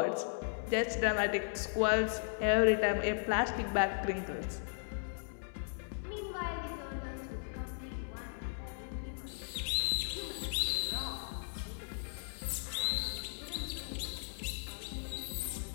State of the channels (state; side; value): silent; right; digital silence